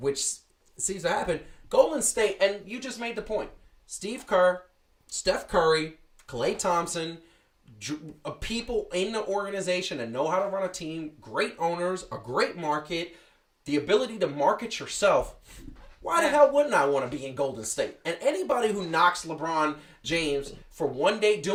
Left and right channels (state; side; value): identical; both; correlation 1.00